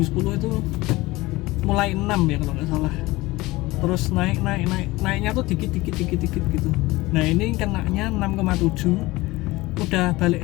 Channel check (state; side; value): quieter; right; 20.3 dB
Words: itu mulai 6 ya kalau nggak salah, terus naiknya tuh dikit gitu. Nah ini kenanya 6,7, udah